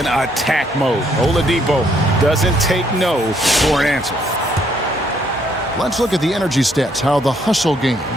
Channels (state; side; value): normal; both; correlation 0.69